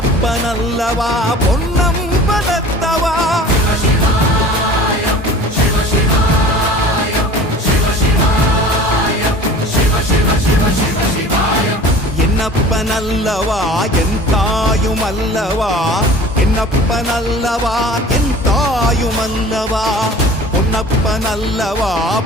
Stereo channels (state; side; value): normal; both; correlation 0.43